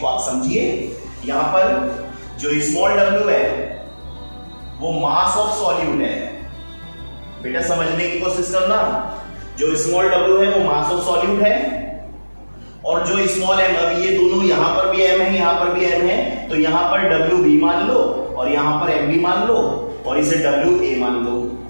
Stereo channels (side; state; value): both; inverted; correlation -1.00